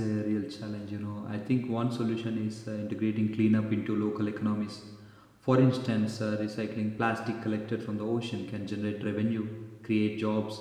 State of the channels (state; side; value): identical; both; correlation 1.00